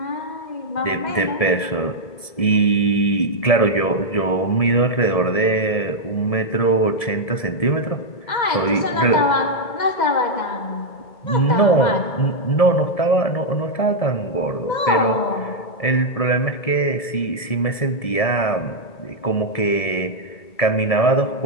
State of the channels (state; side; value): late; right; 1.7 ms